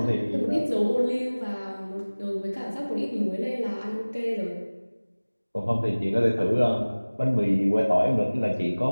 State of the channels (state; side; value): inverted; both; correlation -1.00